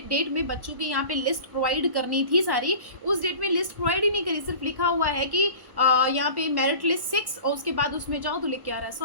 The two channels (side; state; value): left; late; 1.1 ms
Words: में बच्चों की यहाँ पे लिस्ट प्रोवाइड करनी थी सारी, उस डेट में लिस्ट प्रोवाइड ही नहीं करी। सिर्फ लिखा हुआ है कि यहाँ पे मेरिट लिस्ट 6, और उसके बाद उसमें जाओ तो लिख के आ रहा है